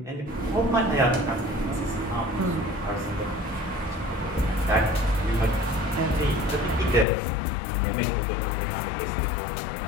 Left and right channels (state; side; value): drops out; right; at 7.1 s